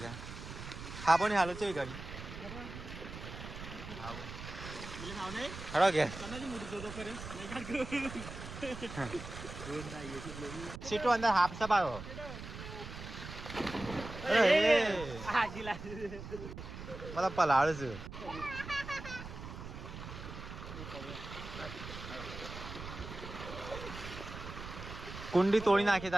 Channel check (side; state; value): right; noise; rumble, 10 dB below the sound